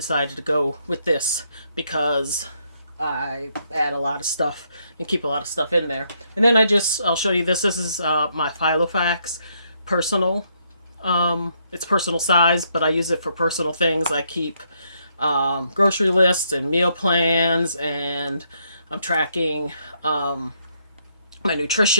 to go with this, because I add a lot of stuff and keep a lot of stuff in there. And then I'll show you this. This is my Filofax personal. It's personal size, but I use it for personal things. I keep grocery lists and meal plans, and I'm tracking my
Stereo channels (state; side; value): inverted; both; correlation -0.74